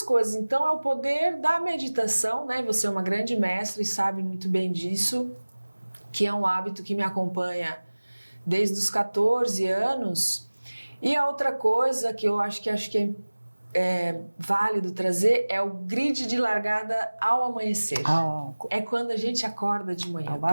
coisas. Então, é o poder da meditação, né? Você é uma grande mestra e sabe muito bem disso, que é um hábito que me acompanha desde os 14 anos. E a outra coisa que eu acho que é válido trazer é o grid de largada ao amanhecer. É quando a gente acorda de manhã.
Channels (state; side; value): inverted; both; correlation -1.00